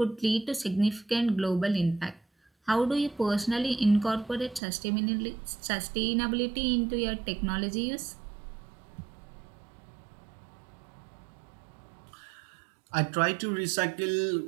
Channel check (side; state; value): left; drops out; at 4.6 s